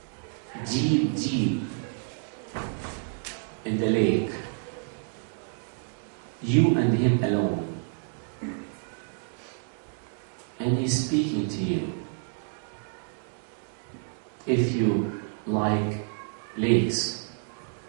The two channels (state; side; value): silent; left; 59 dB below the other